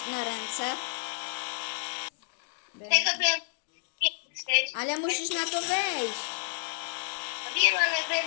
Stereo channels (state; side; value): silent; right; digital silence